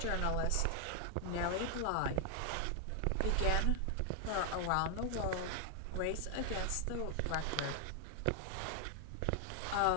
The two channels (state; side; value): different; both; correlation 0.00